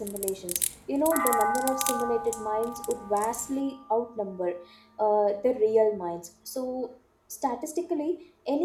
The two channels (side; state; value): both; identical; correlation 1.00